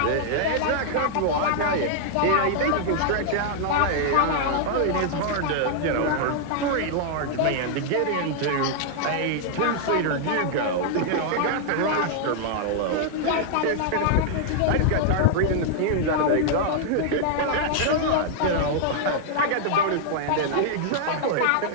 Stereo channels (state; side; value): different; both; correlation -0.01